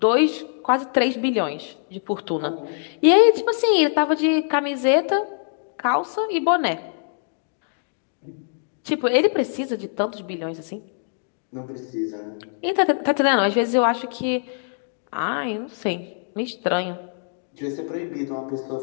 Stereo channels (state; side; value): silent; right; digital silence